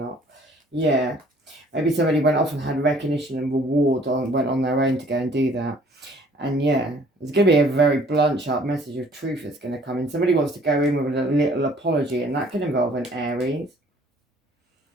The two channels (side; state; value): both; normal; correlation 0.57